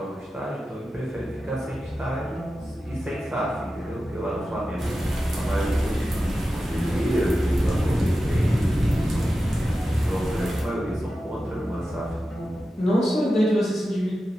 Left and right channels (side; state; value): both; normal; correlation 0.92